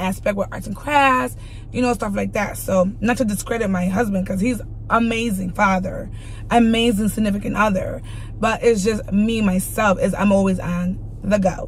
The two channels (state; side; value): identical; both; correlation 1.00